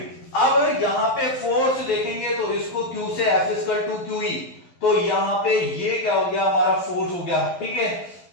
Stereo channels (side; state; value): right; late; 11 ms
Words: अब यहाँ पे फोर्स देखेंगे तो इसको क्यू से f equal to q e, तो यहाँ पे ये क्या हो गया, हमारा फोर्स हो गया, ठीक है,